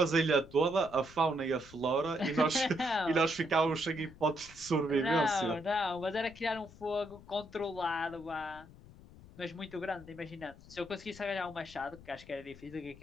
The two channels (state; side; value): noise; left; rumble, 20 dB below the sound